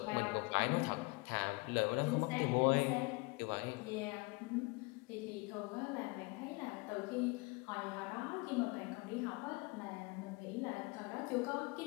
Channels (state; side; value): quieter; right; 27.1 dB